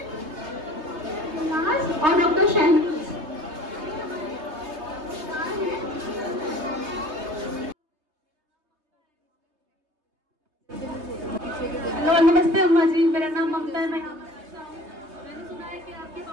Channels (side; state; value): left; late; 3.3 ms